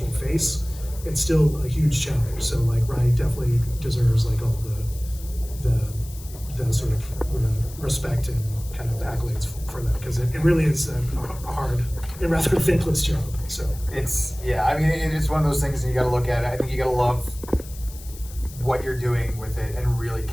face, it's still a huge challenge. So like Rye definitely deserves like all the sort of respect and kind of accolades for that, because it really is a hard and rather thankless job. So It's I mean it's one of those things, and you got to look at it. I think you got to love what you're doing with it and really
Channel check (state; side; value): noise; left; hiss, 18 dB below the sound